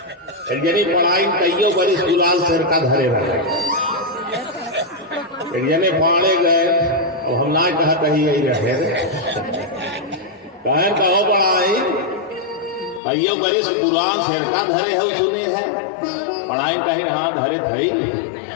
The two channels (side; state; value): right; drops out; at 13.0 s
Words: एक जने पढ़ाई कईयों बड़ी गुलाल शेरका धरे रहे, एक जने पाने गए और हम ना कहते ही यही रहे कहर कहो पढ़ाई कईयों बड़ी गुलाल शेरका धरे है, सुने हैं पढ़ाई कहीं हाँ धरे थई